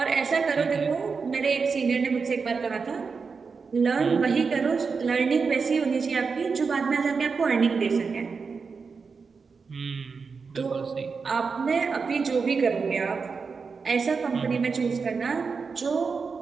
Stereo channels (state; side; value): quieter; left; 5.1 dB